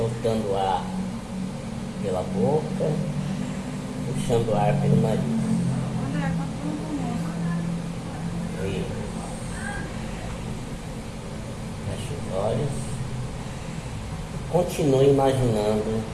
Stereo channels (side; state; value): both; identical; correlation 1.00